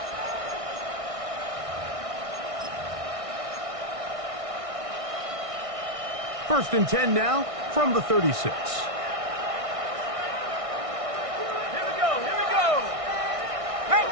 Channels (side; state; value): left; late; 1.6 ms